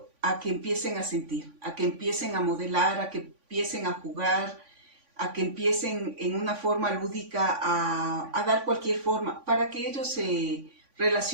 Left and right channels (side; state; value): left; late; 3.5 ms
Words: a que empiecen a sentir, a que empiecen a modelar, a que empiecen a jugar, a que empiecen en una forma lúdica a dar cualquier forma para que ellos se